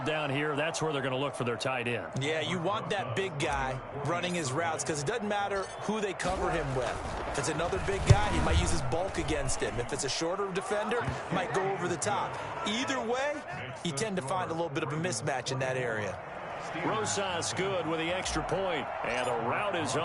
here. That's where they're going to look for their tight end. Yeah, you want that big guy running his routes because it doesn't matter who they cover him with. If it's another big guy, he might use his bulk against him. If it's a shorter defender, he might go over the top. Either way, you tend to find a little bit of a mismatch in that area. Rosas good with the extra point. And the route is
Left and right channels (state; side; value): identical; both; correlation 1.00